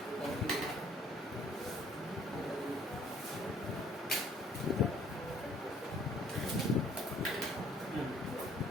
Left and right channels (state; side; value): normal; both; correlation 0.59